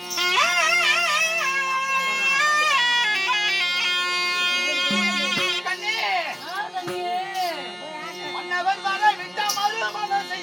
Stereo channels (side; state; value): both; identical; correlation 1.00